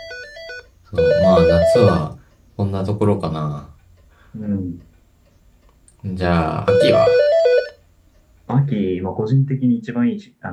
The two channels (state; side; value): identical; both; correlation 1.00